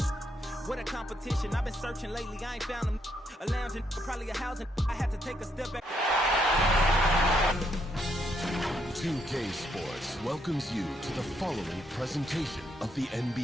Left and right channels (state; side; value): normal; both; correlation 0.75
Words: What a competition. I've been searching lately. I ain't found them. A lounge and probably a housing. I had to take a step back. 2K Sports welcomes you to the following presentation of the